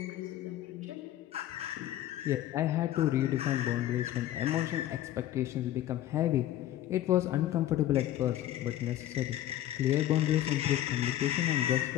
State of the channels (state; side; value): quieter; right; 13.0 dB